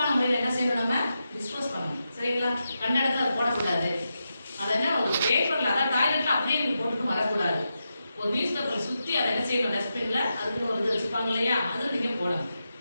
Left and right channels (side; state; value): both; inverted; correlation -0.88